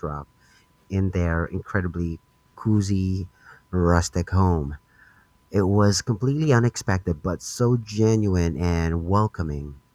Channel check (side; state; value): both; identical; correlation 1.00